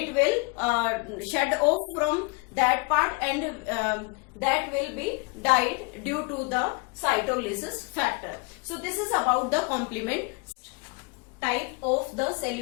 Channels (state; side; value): quieter; right; 29.3 dB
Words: will shed off from that part and that will be died due to the cytolysis factor. So this is about the complement. Type of the